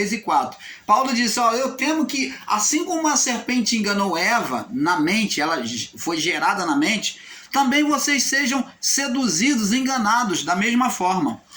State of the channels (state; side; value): identical; both; correlation 1.00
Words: e 4. Paulo disse, eu temo que, assim como a serpente enganou Eva na mente, ela foi gerada na mente, também vocês sejam seduzidos, enganados da mesma forma.